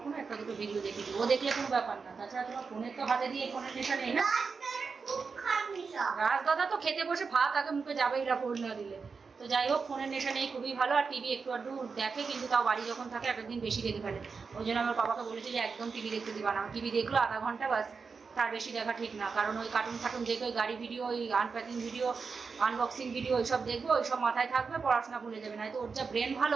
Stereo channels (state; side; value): quieter; left; 5.1 dB